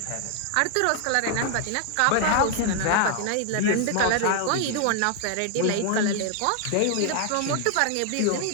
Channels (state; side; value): different; both; correlation 0.00